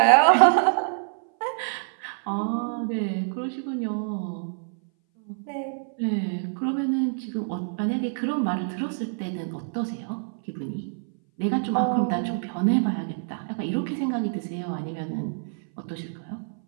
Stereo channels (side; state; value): left; silent; 58 dB below the other